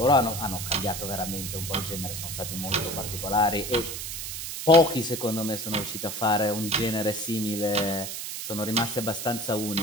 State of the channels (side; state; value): right; noise; hiss, 6 dB below the sound